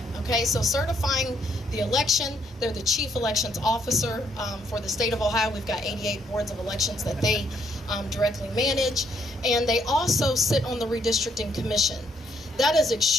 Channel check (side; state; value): both; normal; correlation 0.71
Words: Okay, so certifying the election, they're the chief elections officer for the state of Ohio. We've got 88 boards of elections that they directly manage, and they also sit on the redistricting commission. That is